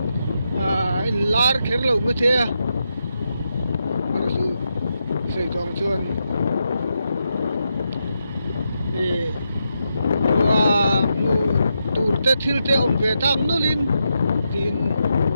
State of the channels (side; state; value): both; inverted; correlation -0.85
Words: anh lar khét lâu mấy thế mà rồi soi trong chuan và tụt te thil te om ve tang no lin tin